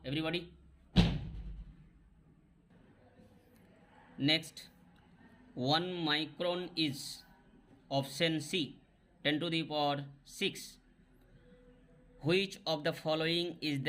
everybody. Next 1 micron is option C 10⁶. Which of the following is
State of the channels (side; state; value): both; identical; correlation 1.00